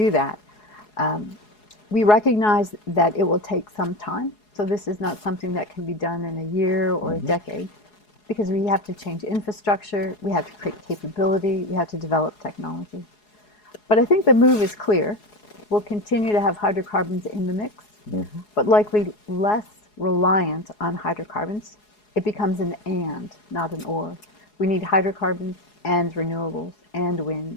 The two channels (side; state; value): right; late; 4.8 ms